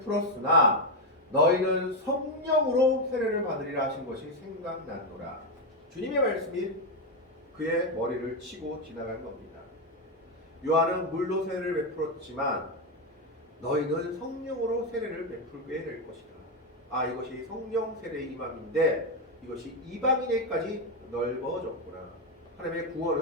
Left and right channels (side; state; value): both; normal; correlation 0.07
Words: 너희는 성령으로 세례를 받으리라 하신 것이 생각났노라. 주님의 말씀이 그의 머리를 치고 지나간 겁니다. 요한은 물로 세례를 베풀었지만 너희는 성령으로 세례를 베풀게 될 것이다. 이것이 성령 세례의 임함인데 이것이 이방인에까지 넓어졌구나. 하나님의